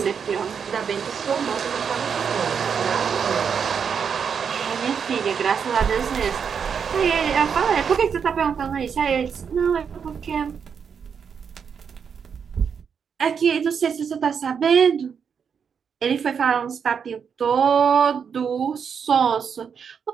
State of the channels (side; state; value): left; quieter; 6.8 dB